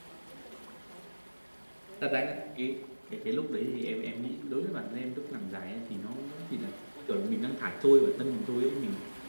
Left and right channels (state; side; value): inverted; both; correlation -1.00